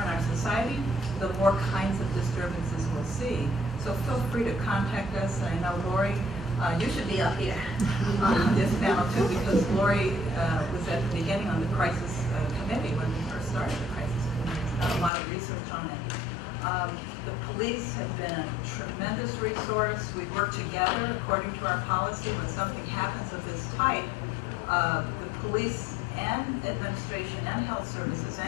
in our society, the more kinds of disturbances we'll see. So feel free to contact us. And I know Lori, you should be up here on this panel too, because Lori was at the beginning on the crisis committee when we first started the crisis committee. She's done a lot of research on it. The police have been a tremendous resource. We work together according to our policy. When something happens of this type, the police and administration and health services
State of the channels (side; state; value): right; drops out; at 15.1 s